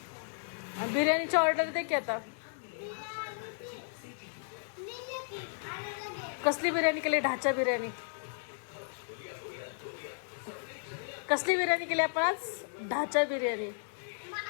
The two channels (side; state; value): right; silent; digital silence